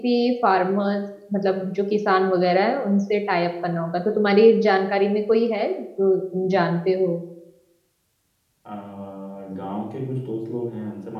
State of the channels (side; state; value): both; identical; correlation 1.00